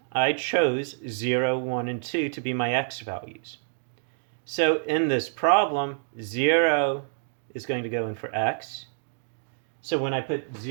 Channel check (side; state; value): left; silent; digital silence